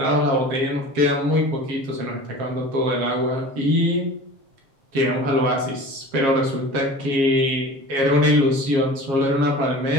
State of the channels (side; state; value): left; late; 7.3 ms